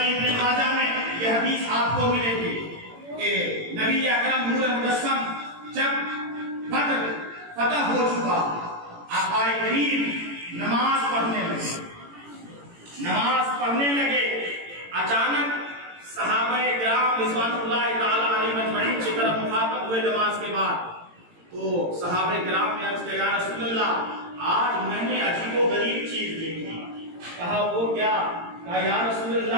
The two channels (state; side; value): late; left; 18 ms